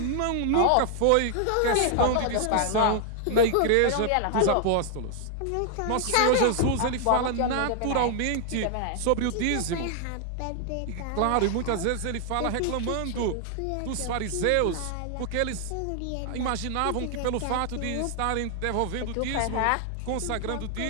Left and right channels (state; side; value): different; both; correlation 0.00